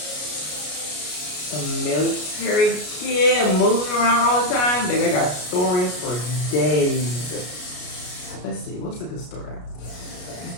a military kid, moving around all the time. Baby, I got stories for days. Let's see, what's a good story?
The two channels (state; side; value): late; right; 33 ms